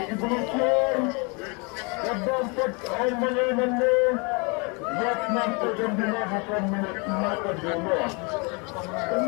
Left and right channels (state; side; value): quieter; right; 31.3 dB